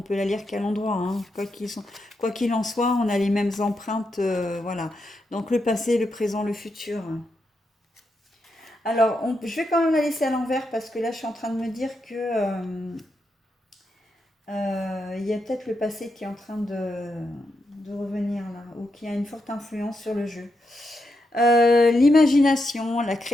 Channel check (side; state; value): both; normal; correlation 0.84